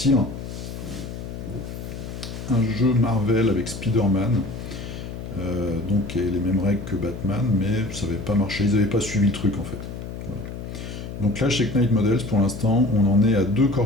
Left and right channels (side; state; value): left; noise; hum, 9 dB below the sound